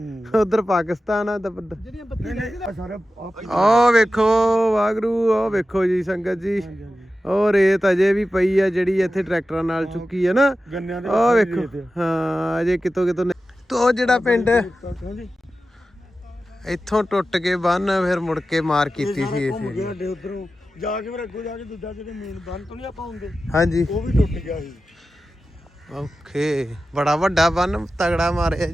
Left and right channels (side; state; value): both; normal; correlation 0.93